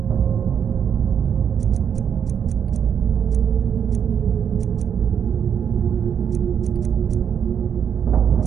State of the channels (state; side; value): quieter; left; 8.0 dB